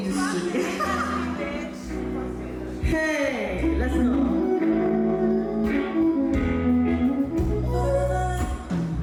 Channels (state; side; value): identical; both; correlation 1.00